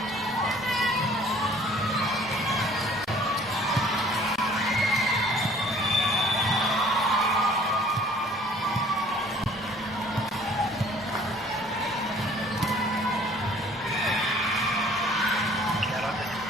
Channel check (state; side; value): normal; both; correlation 0.54